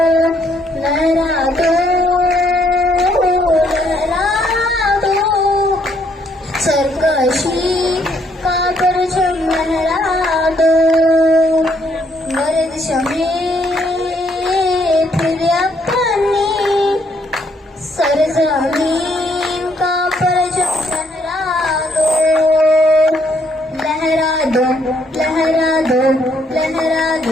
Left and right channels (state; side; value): normal; both; correlation 0.70